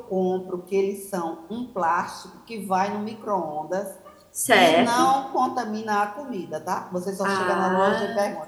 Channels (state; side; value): identical; both; correlation 1.00